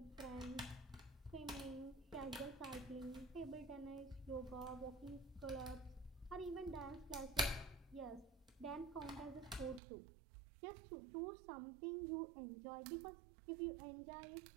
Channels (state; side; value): drops out; left; at 9.8 s